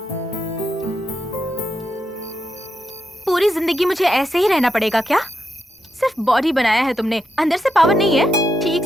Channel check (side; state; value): both; normal; correlation 0.83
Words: पूरी जिंदगी मुझे ऐसे ही रहना पड़ेगा क्या? सिर्फ बॉडी बनाया है तुमने, अंदर से पावर नहीं है। ठीक